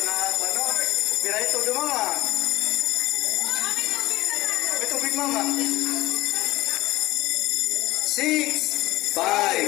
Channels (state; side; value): quieter; right; 18.4 dB